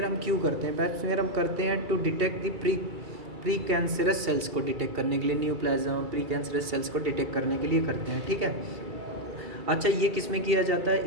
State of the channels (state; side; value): late; left; 2.3 ms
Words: हम क्यों करते हैं? पैप स्मीयर हम करते हैं to detect the pre cancerous cells को डिटेक्ट करने के लिए, न्यूप्लाज्म प्री कैंसरस सेल्स को डिटेक्ट करने के लिए करते हैं, ठीक है। अच्छा, ये किस में किया जाता